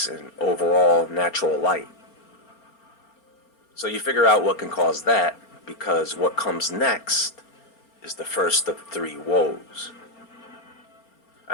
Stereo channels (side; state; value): right; late; 4.4 ms